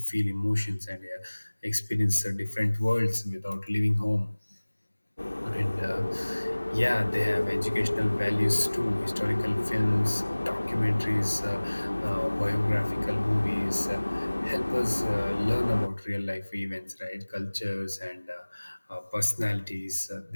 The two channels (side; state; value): both; inverted; correlation -1.00